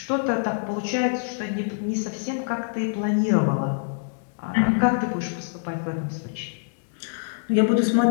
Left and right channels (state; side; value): silent; right; digital silence